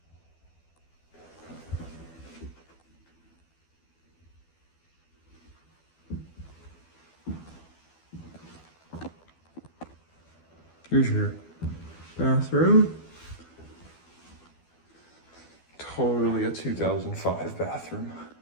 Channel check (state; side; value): late; right; 12 ms